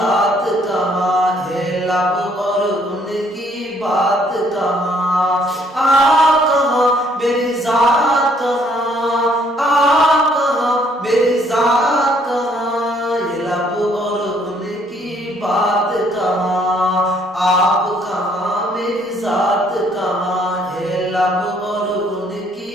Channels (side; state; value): both; normal; correlation 0.65